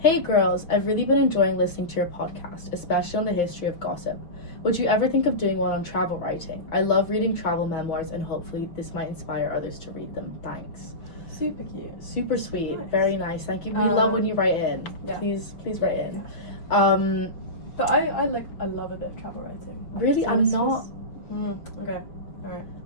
girls, I've really been enjoying listening to your podcast, especially on the history of gossip. Would you ever think of doing one on travel writing? I love reading travel memoirs, and hopefully this might inspire others to read them. Thanks." Super cute. Super sweet. Nice. Very nice. Thank you. We love when you write in. Yeah. Please write in. Yeah. But I love a bit of travel writing. Really, So I'm this not. was- okay. All right.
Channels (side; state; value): right; late; 6.3 ms